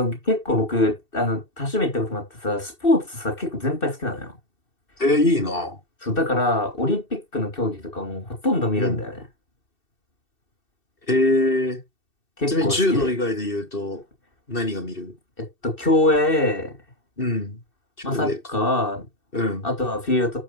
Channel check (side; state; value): right; late; 2.7 ms